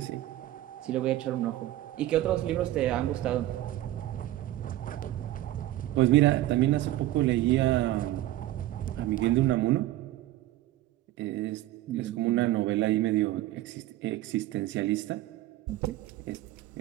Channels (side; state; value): left; quieter; 15.2 dB